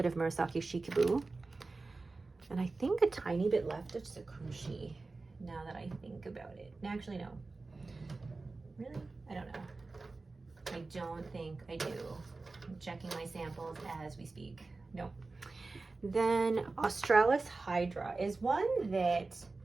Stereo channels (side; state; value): left; quieter; 3.6 dB